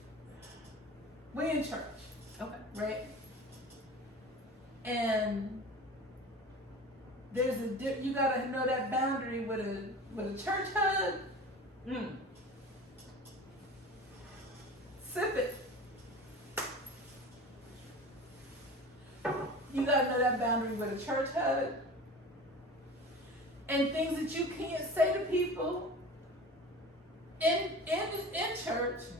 in church. Okay. Right? And you gotta know that boundary with a church hug. Sip it. You gotta know that boundary with a church hug. And things that you can't say to people in church,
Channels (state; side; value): normal; both; correlation 0.36